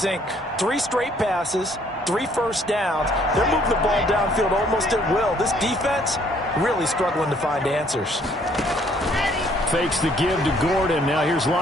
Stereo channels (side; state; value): both; normal; correlation 0.63